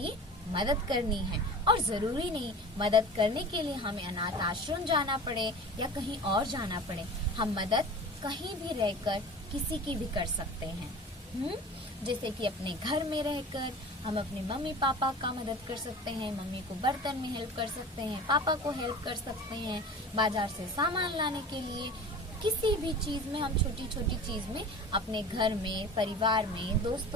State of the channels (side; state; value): both; normal; correlation 0.37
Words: मदद करनी है और जरूरी नहीं मदद करने के लिए हमें अनाथ आश्रम जाना पड़े या कहीं और जाना पड़े। हम मदद कहीं भी रहकर किसी की भी कर सकते हैं। जैसे कि अपने घर में रहकर हम अपने मम्मी पापा का मदद कर सकते हैं, मम्मी को बर्तन में हेल्प कर सकते हैं, पापा को हेल्प कर सकते हैं, बाजार से सामान लाने के लिए किसी भी चीज में, हम छोटी छोटी चीज में अपने घर में, परिवार में,